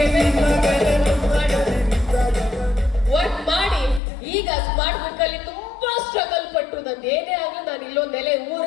ವರ್ಕ್ ಮಾಡಿ ಈಗ ಸ್ಮಾರ್ಟ್ ವರ್ಕ್ ಅಲ್ಲಿ ತುಂಬಾ ಸ್ಟ್ರಗಲ್ ಪಟ್ಟು ನಂದು ಏನೇ ಆಗ್ಲಿ ನಾನು ಇಲ್ಲೊಂದು ನೆಲೆ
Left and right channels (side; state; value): right; drops out; at 4.0 s